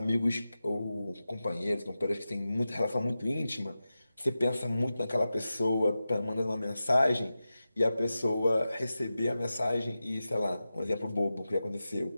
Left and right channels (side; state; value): both; inverted; correlation -0.93